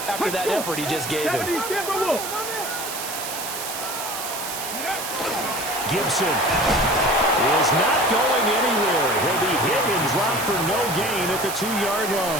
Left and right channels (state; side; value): noise; right; hiss, 6 dB below the sound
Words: after that effort he just gave him. Gibson is not going anywhere. He'll be hit and dropped for no gain at the 2-yard